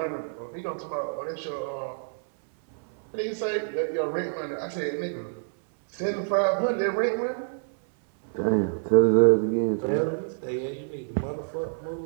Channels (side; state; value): left; silent; 60 dB below the other